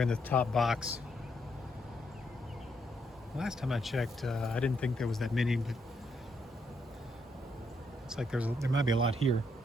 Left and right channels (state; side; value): normal; both; correlation 0.76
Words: in the top box. Last time I checked, I didn't think there was that many, but looks like there might be a lot here.